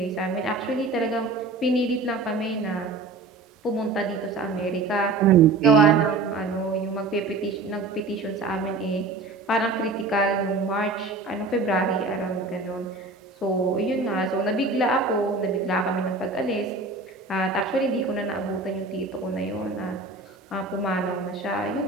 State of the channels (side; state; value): left; quieter; 3.5 dB